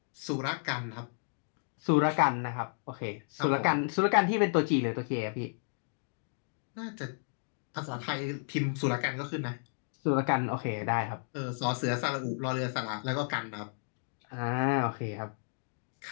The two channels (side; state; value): right; silent; digital silence